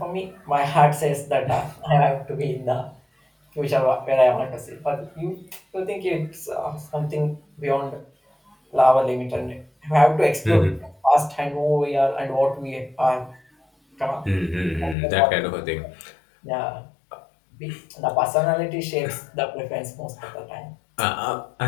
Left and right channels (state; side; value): drops out; right; at 15.0 s